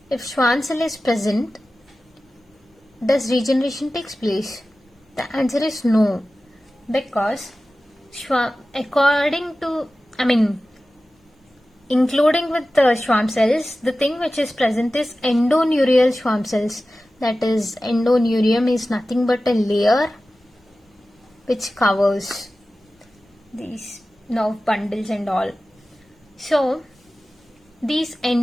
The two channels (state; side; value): normal; both; correlation 0.95